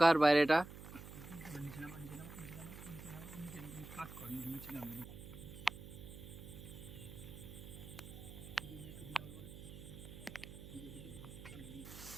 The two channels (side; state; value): right; noise; hum, 13 dB below the sound